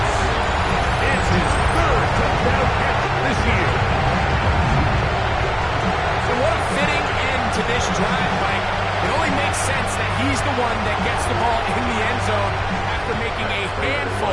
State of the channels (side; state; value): both; identical; correlation 1.00